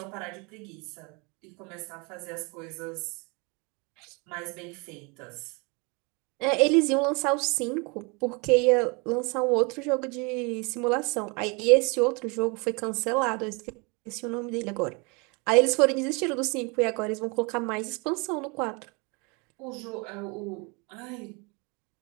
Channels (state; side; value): quieter; left; 30.3 dB